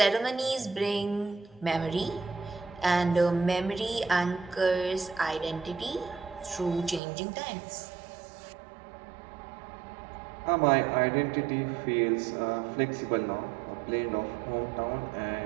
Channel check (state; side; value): drops out; left; at 7.0 s